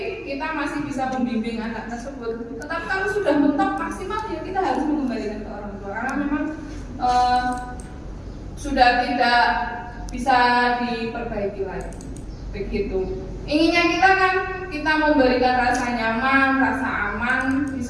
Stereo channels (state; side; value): identical; both; correlation 1.00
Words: kita masih bisa membimbing anak tersebut. Tetapi kalau sudah mentok maksimal, ya kita harus mengembalikan ke orang tua karena memang sudah tidak bisa diperbaiki lagi. Begitu. Inginnya kita kan kita memberikan rasa nyaman, rasa aman di